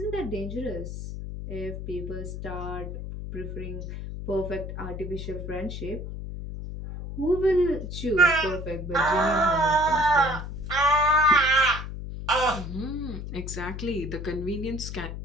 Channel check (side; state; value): left; noise; hum, 7 dB below the sound